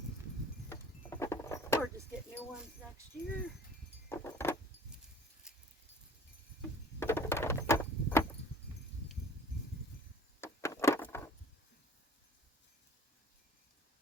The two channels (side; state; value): both; normal; correlation 0.48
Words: Or just get new ones next year.